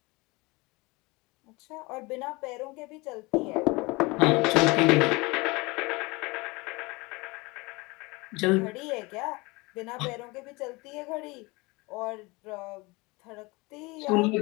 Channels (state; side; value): quieter; right; 24.6 dB